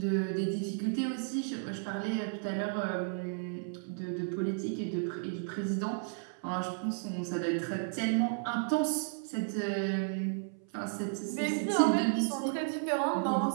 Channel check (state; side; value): silent; left; 56 dB below the other